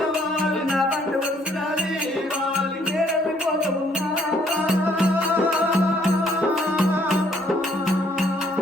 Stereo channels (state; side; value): normal; both; correlation 0.65